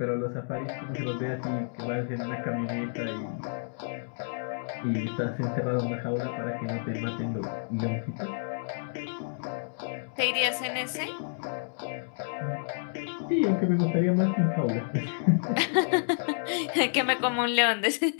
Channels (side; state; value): right; silent; digital silence